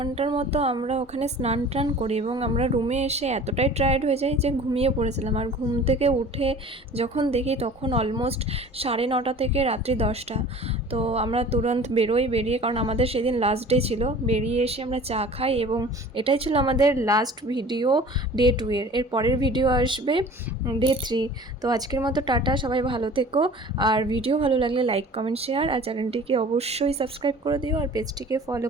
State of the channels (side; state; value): both; normal; correlation 0.44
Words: মতো আমরা ওখানে স্নান টান করি এবং আমরা রুমে এসে এতটাই টায়ার্ড হয়ে যাই যে ঘুমিয়ে পড়েছিলাম। আর ঘুম থেকে উঠে যখন দেখি তখন অলমোস্ট 9:30 থেকে রাত্রি 10টা। তো আমরা তুরন্ত বেরিয়ে, কারণ আমাদের সেদিন লাস্ট ডে ছিল। বেরিয়ে এসে আমরা চা খাই এবং এটাই ছিল আমাদের লাস্ট ভিডিও ডে 2 এর পরের ভিডিও আসবে ডে 3। তো আজকের মতো টাটা, সবাই ভালো থেকো। আর ভিডিও ভালো লাগলে লাইক কমেন্ট শেয়ার, আর চ্যানেলটিকে অবশ্যই সাবস্ক্রাইব করে দিও আর পেজটিকে ফলো